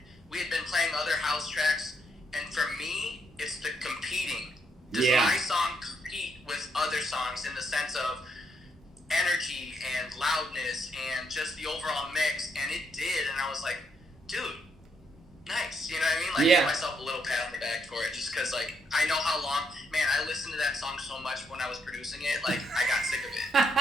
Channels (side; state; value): both; normal; correlation 0.76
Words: we had been playing other house tracks. And for me, it's the competing. Does my song compete with other songs in the sense of energy and loudness and just the overall mix? And it did. And I was like, dude, nice. You know what I mean? Like, give myself a little pat on the back for it, just because, like, I know how long. Man, I listened to that song so much when I was producing it. Like, I got sick of it.